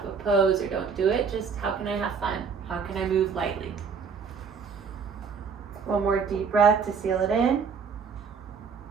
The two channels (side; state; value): left; quieter; 5.9 dB